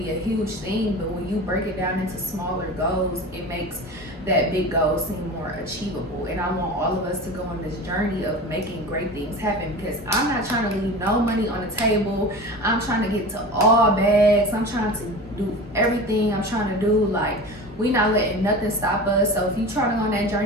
a huge thing, but when you break it down into smaller goals, it makes that big goal seem more achievable. And I want all of us to go on this journey of making great things happen, because I'm not trying to leave no money on the table. I'm trying to get to all bags. I'm trying to do everything I'm trying to do. Like, we not letting nothing stop us. So if you're trying to go on that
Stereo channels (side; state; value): both; normal; correlation 0.33